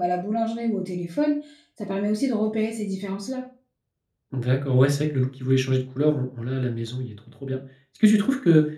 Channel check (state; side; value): identical; both; correlation 1.00